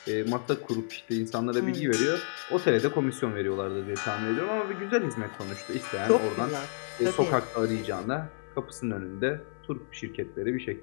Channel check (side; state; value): right; silent; 56 dB below the other